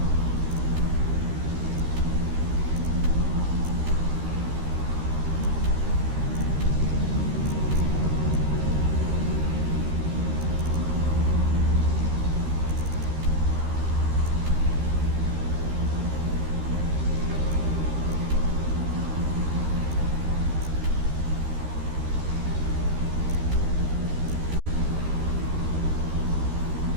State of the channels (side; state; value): left; late; 13 ms